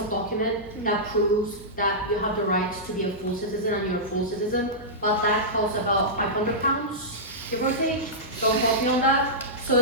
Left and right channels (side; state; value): both; normal; correlation -0.14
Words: document that proves that you have the right to be a full citizen and you're a full citizen, but that costs about £500, give or take. Don't quote me on that. So